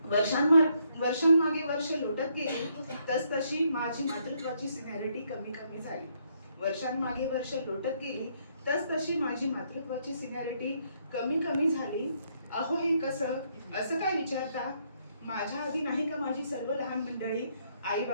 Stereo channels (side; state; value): both; inverted; correlation -0.73